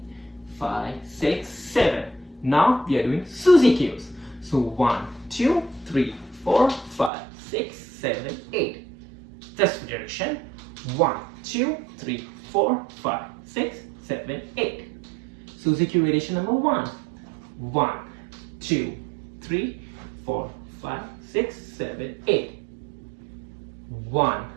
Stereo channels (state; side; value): drops out; left; at 7.1 s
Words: 5, 6, 7. Now we are doing Suzy Qs. So 1, 2, 3, 4, 5, 6, 7, 8. This direction. 1, 2, 3, 4, 5, 6, 7, 8. Suzy Q variation number 1. 1, 2, 3, 4, 5, 6, 7, 8. 1,